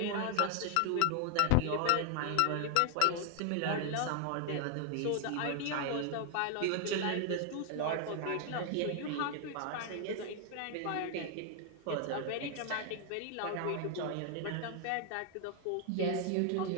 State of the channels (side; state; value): both; different; correlation 0.00